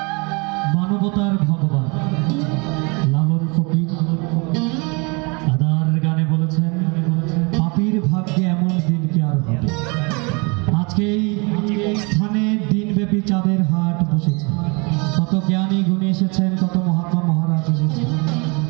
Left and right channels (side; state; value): left; quieter; 30.0 dB